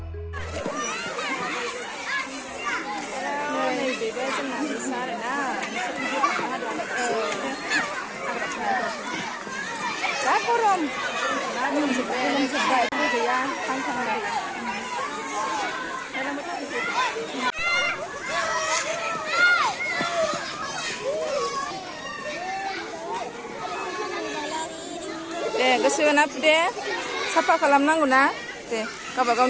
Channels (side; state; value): both; identical; correlation 1.00